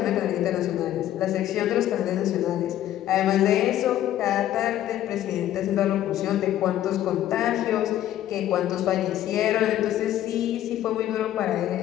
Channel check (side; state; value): right; quieter; 12.5 dB